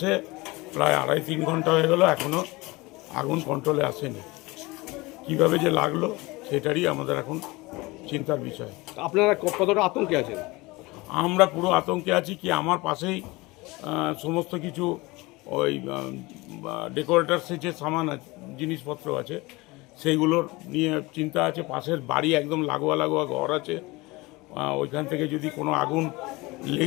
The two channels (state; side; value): quieter; right; 22.8 dB